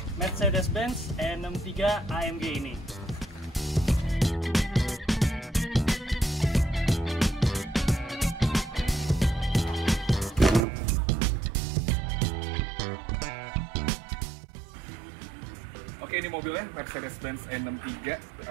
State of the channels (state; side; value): drops out; left; at 10.6 s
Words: Mercedes-Benz E63 AMG ini. Oke, ini mobilnya Mercedes-Benz E63